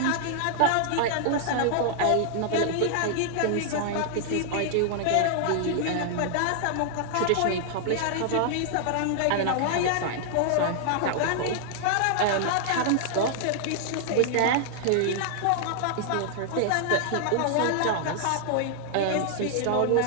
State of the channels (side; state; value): both; different; correlation -0.01